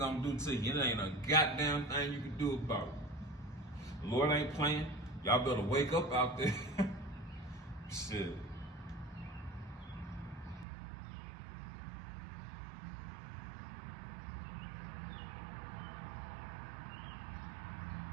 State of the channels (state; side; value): drops out; left; at 10.7 s